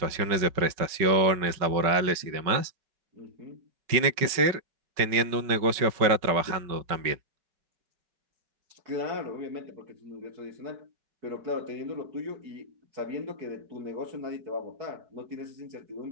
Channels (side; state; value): left; late; 5.3 ms